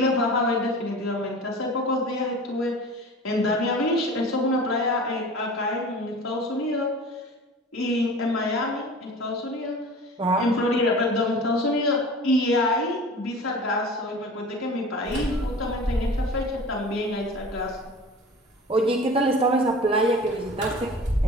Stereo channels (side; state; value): both; normal; correlation 0.39